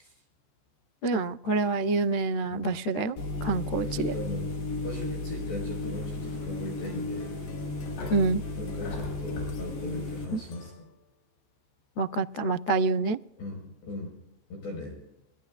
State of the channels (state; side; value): late; right; 14 ms